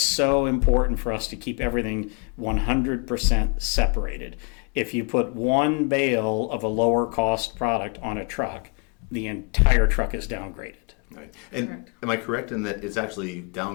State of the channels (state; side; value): quieter; right; 35.0 dB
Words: important for us to keep everything 100% separated. If you put one bale of a lower cost product on a truck, the entire truck is downgraded. Right. And correct. Am I correct in that it's actually